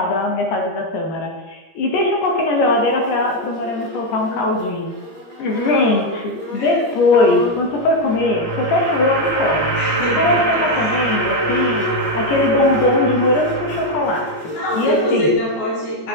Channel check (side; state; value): right; late; 14 ms